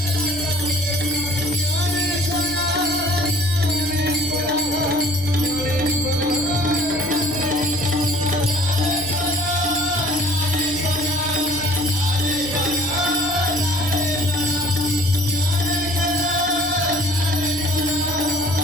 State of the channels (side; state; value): right; noise; hum, 18 dB below the sound